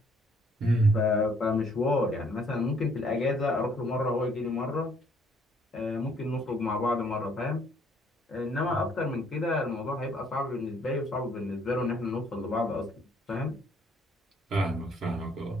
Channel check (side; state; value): both; normal; correlation 0.64